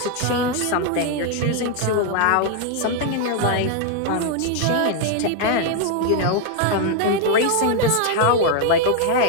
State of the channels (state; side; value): different; both; correlation 0.00